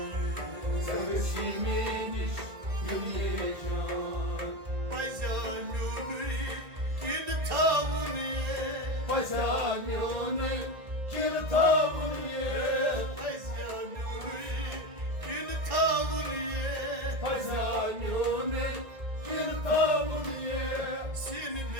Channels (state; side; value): late; left; 1.9 ms